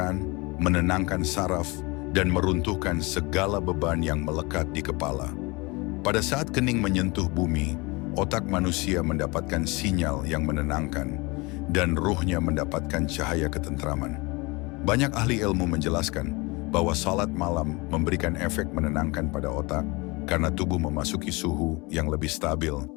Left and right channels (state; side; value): quieter; right; 25.7 dB